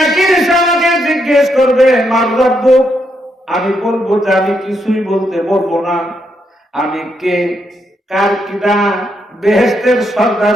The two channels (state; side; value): normal; both; correlation 0.78